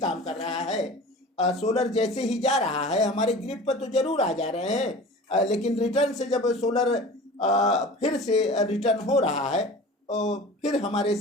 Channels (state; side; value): normal; both; correlation 0.39